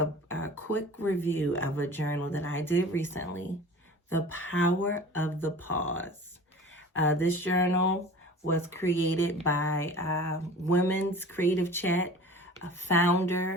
quick review of a journal that I did recently, The Power of the Pause. This journal was created by Women's Creative Chat,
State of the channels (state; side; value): normal; both; correlation 0.40